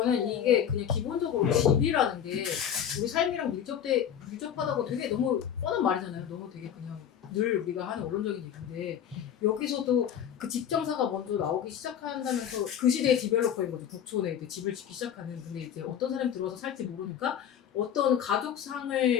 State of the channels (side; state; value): right; quieter; 9.2 dB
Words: 이게 그냥 기본적으로 집이라는 게 우리 삶이랑 밀접하다고 되게 너무 뻔한 말이잖아요. 너무 되게 그냥 늘 우리가 하는 원론적인 얘기인데 여기서도 그 집정사가 먼저 나오기 시작한다면서 그 시대의 디벨로퍼인 거죠. 북촌에 이제 집을 짓기 시작하는. 근데 이제 어떤 사람이 들어와서 살지 모르니까 어떤